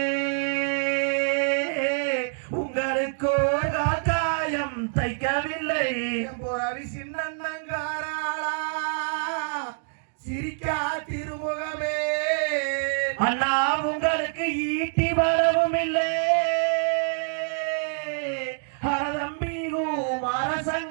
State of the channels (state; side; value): silent; left; digital silence